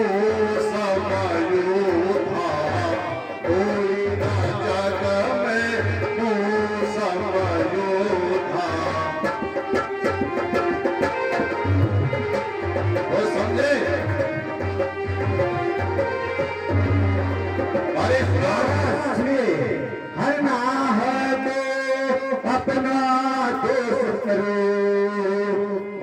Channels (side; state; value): both; identical; correlation 1.00